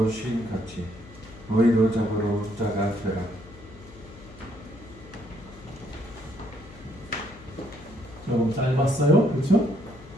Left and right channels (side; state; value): left; noise; hum, 19 dB below the sound